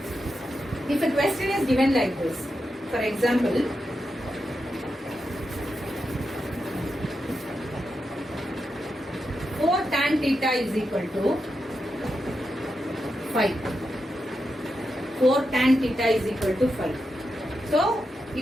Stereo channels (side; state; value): both; normal; correlation 0.87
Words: if a question is given like this, for example, 4 tan theta is equal to 5. 4 tan theta is equal to 5. So,